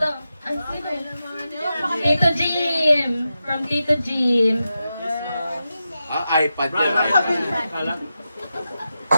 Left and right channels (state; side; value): inverted; both; correlation -0.90